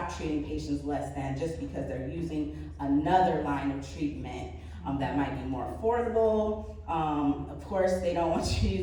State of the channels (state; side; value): identical; both; correlation 1.00